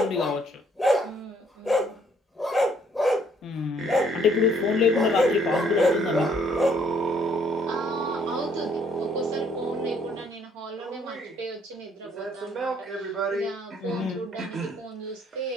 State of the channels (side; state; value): both; normal; correlation 0.65